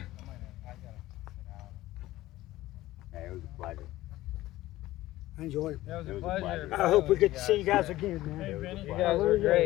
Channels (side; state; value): right; quieter; 16.4 dB